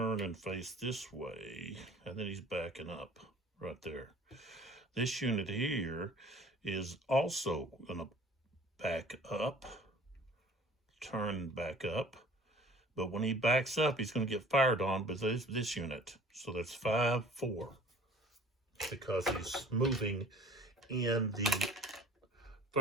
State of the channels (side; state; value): both; normal; correlation 0.48